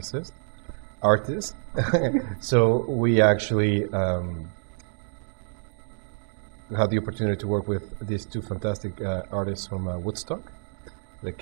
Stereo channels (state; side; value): silent; left; digital silence